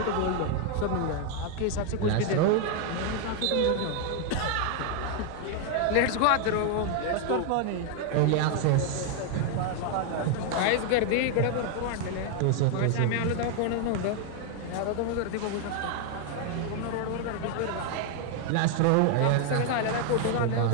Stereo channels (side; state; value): both; different; correlation 0.00